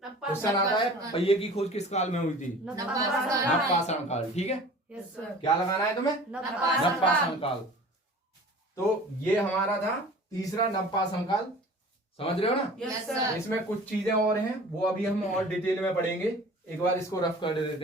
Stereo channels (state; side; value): normal; both; correlation 0.43